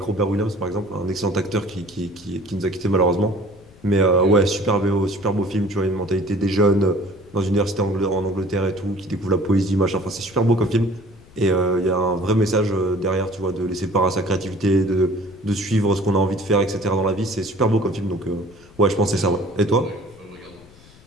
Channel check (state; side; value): noise; left; rumble, 25 dB below the sound